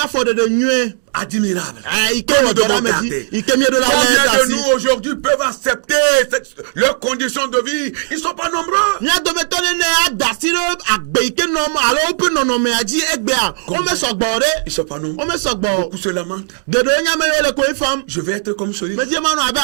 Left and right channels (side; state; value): left; silent; digital silence